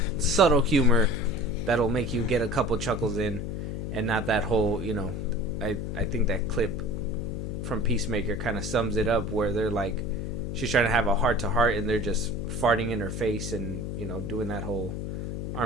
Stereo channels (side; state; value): left; noise; hum, 4 dB below the sound